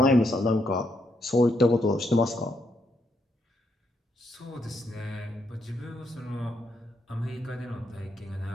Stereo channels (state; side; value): normal; both; correlation 0.77